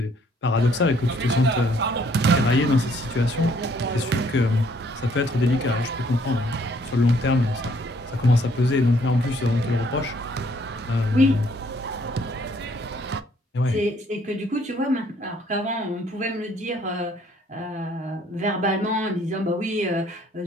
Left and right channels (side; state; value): both; normal; correlation 0.64